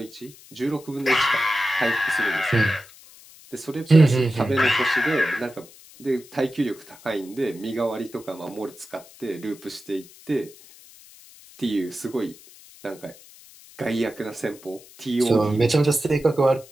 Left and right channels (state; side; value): noise; left; hiss, 22 dB below the sound